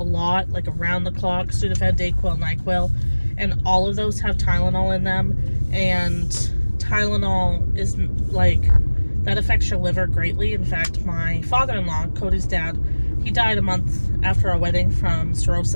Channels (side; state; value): both; inverted; correlation -1.00